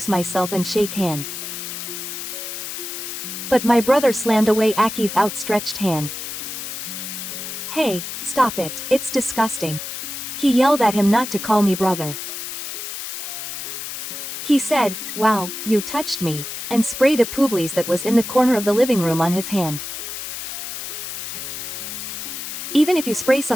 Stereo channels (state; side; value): noise; left; hiss, 7 dB below the sound